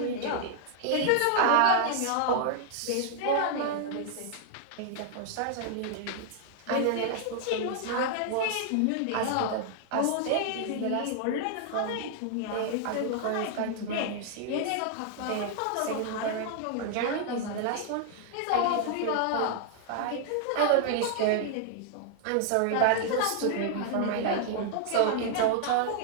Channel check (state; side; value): different; both; correlation 0.00